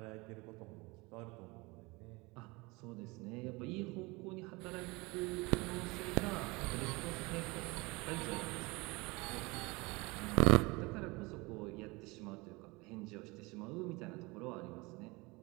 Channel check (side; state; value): left; quieter; 24.8 dB